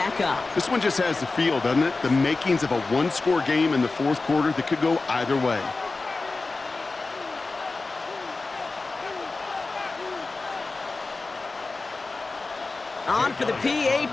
up. This one just has the feel, doesn't it? The makings of a 1-score game in the 4th quarter that could go either way. On for the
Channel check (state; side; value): quieter; right; 3.6 dB